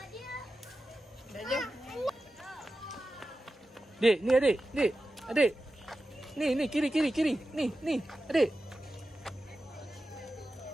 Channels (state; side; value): normal; both; correlation 0.93